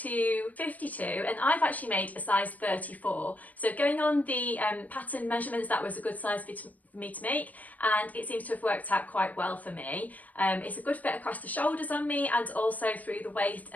52, and I've actually made a size 34. So going on the pattern measurements, that was a good size for me to make, and it seems to have worked out quite well for me. It's a good fit across the shoulders on me and also through the waist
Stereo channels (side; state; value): right; late; 0.076 ms